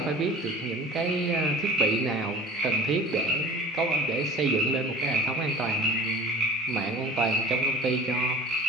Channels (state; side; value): normal; both; correlation 0.41